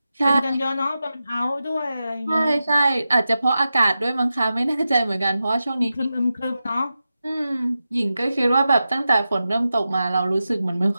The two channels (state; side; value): inverted; both; correlation -0.92